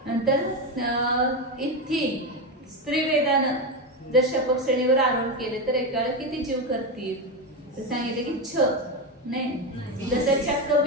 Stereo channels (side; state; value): both; normal; correlation 0.13